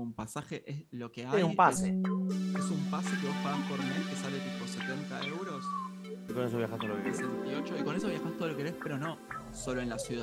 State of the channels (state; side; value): identical; both; correlation 1.00